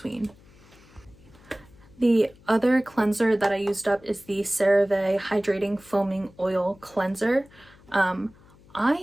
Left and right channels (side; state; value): left; noise; hum, 26 dB below the sound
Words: The other cleanser that I used up is the CeraVe Hydrating Foaming Oil Cleanser.